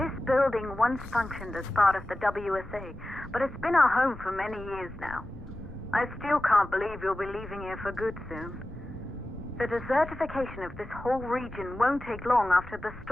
Building once functioned as part of the WSA, but it's been our home for many years now. I still can't believe you'll be leaving here for good soon. The desertification of this whole region won't take long after the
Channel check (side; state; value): left; noise; rumble, 17 dB below the sound